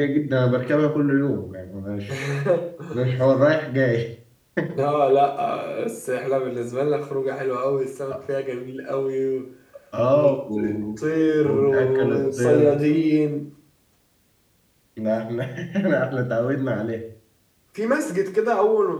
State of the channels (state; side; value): identical; both; correlation 1.00